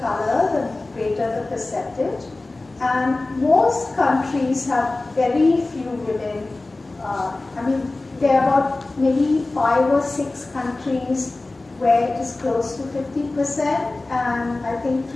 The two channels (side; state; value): right; quieter; 3.1 dB